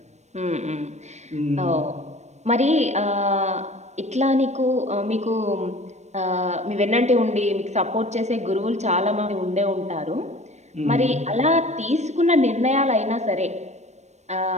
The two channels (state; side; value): late; left; 0.33 ms